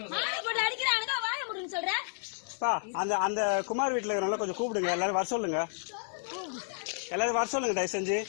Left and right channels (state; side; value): silent; right; 57 dB below the other